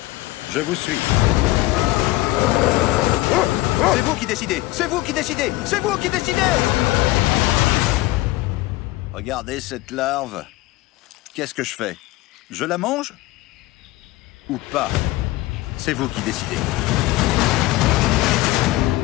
je vous suis. C'est vous qui décidez! C'est vous qui décidez! C'est vous qui décidez! Regardez cette larve. Qu'est-ce que je fais? Je la mange? Ou pas? C'est vous qui décidez.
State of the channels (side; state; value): right; quieter; 18.5 dB